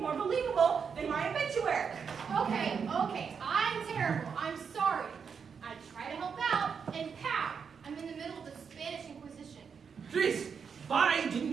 believable than my obituary. Okay, I'm terrible. I'm sorry. I try to help out, and pow! I'm in the middle of the Spanish Inquisition. Jeez, why didn't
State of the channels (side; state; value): left; quieter; 6.4 dB